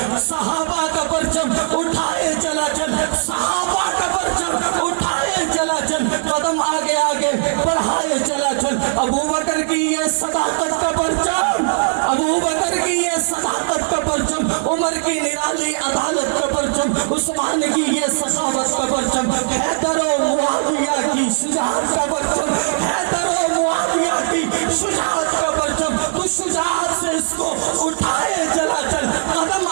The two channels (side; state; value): left; silent; digital silence